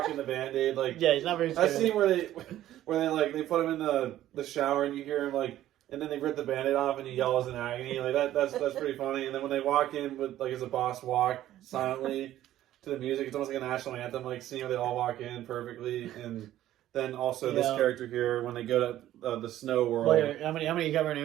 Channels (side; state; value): left; quieter; 13.3 dB